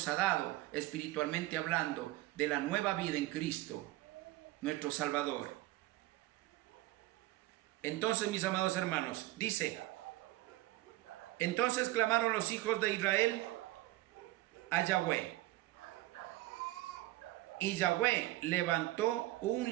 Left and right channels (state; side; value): quieter; left; 17.6 dB